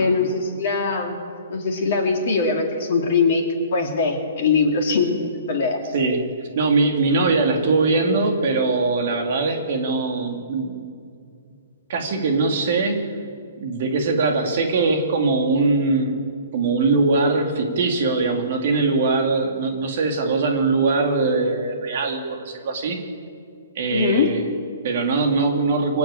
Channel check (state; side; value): inverted; both; correlation -0.49